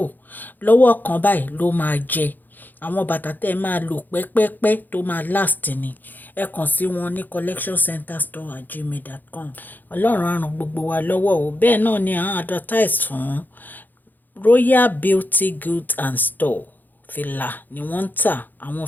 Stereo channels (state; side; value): late; right; 0.087 ms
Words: lọ́wọ́ kan báyìí ló máa jẹ. Àwọn bàtà tẹ́ máa lò pẹ́pẹ́pẹ́ tó máa last ni. Ẹ kàn sí wọn ní collectioncenterstore@gmail.com. Ọlọ́run á ràn gbogbo wa lọ́wọ́ o. Bẹ́ẹ̀ náà ni à ń advertise fún Royal Beauty Goods and Store. Fìlà ni wọ́n ń tà. Àwọn